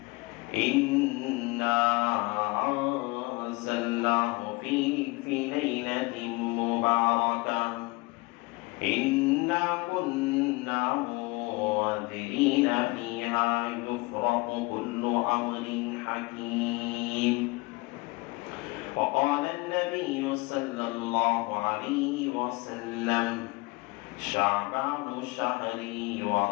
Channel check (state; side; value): quieter; right; 24.4 dB